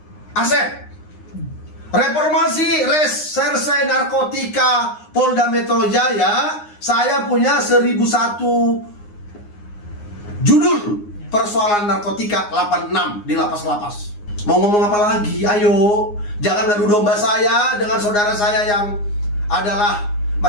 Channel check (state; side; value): late; right; 9.7 ms